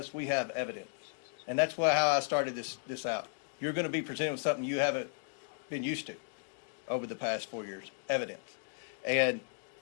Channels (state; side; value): silent; right; digital silence